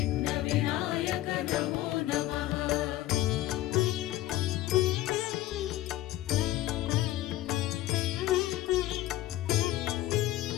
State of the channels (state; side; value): quieter; right; 15.4 dB